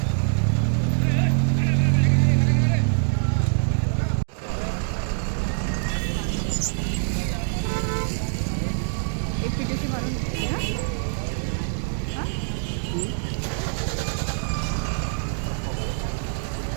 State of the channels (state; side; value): silent; left; digital silence